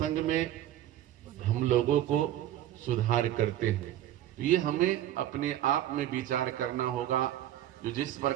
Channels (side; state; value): left; quieter; 12.6 dB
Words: में हम लोगों को सुधार करते हैं। तो ये हमें अपने आप में विचार करना होगा। जो जिस